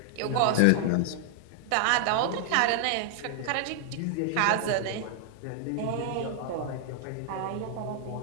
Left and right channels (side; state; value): both; different; correlation 0.00